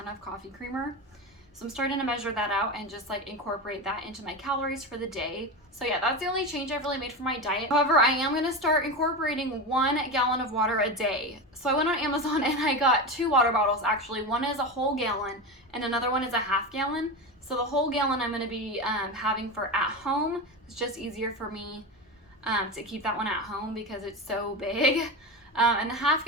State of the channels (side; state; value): both; normal; correlation 0.21